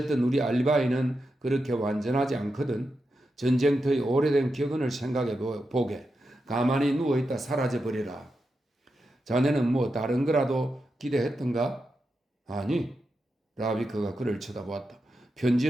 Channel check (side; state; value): both; normal; correlation 0.88